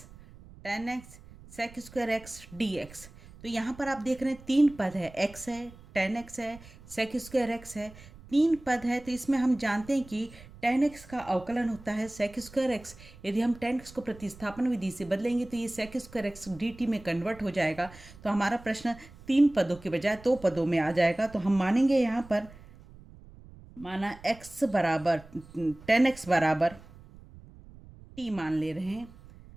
tan x sec² x dx। तो यहाँ पर आप देख रहे हैं 3 पद है, x है, tan x है, sec² x है, 3 पद है। तो इसमें हम जानते हैं कि tan x का अवकलन होता है sec² x। यदि हम tan x को प्रतिस्थापन विधि से बदलेंगे तो ये sec² x dt में कन्वर्ट हो जाएगा। तो हमारा प्रश्न 3 पदों के बजाय 2 पदों में आ जाएगा। तो हम मानेंगे यहाँ पर, माना x बराबर tan x बराबर t मान ले रहे हैं।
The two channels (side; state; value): right; noise; rumble, 20 dB below the sound